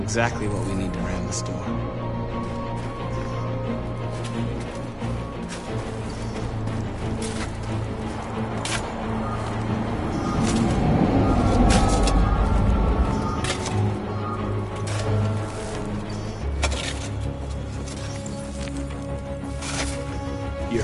Exactly what we need to ram the storm.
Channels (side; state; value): both; identical; correlation 1.00